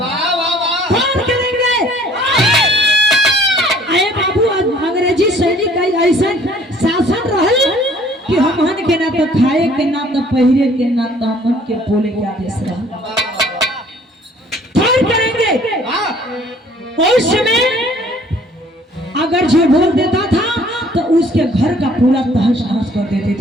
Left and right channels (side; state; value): both; normal; correlation 0.56